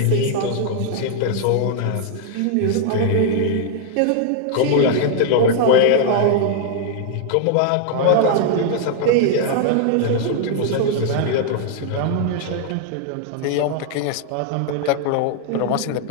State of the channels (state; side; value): different; both; correlation 0.00